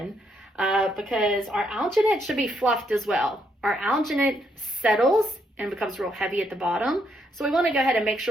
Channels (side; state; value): both; normal; correlation 0.75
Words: because our alginate should be fluffed as well. Our alginate settles and becomes real heavy at the bottom. So we want to go ahead and make